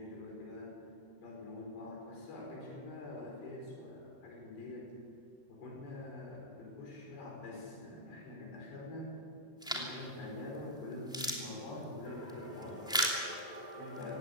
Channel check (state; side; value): normal; both; correlation -0.07